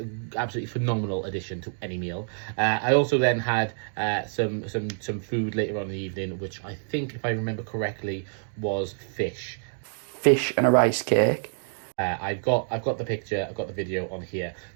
absolutely phenomenal addition to any meal. I also then had some food later on in the evening, which I think, if I remember correctly, was fish. Fish and a rice cake. I've got the picture, I've got the video on here.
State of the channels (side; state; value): left; silent; digital silence